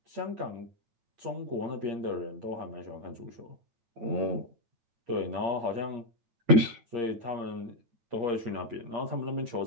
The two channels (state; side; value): late; left; 8.8 ms